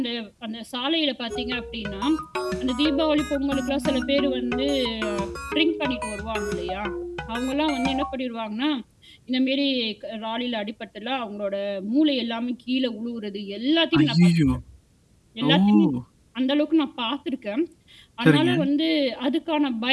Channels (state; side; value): identical; both; correlation 1.00